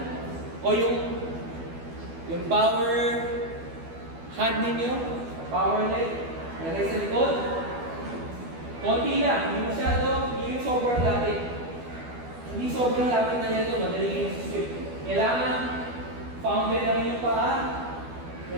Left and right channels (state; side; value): late; left; 12 ms